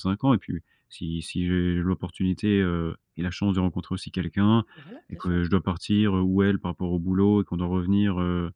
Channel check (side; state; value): both; identical; correlation 1.00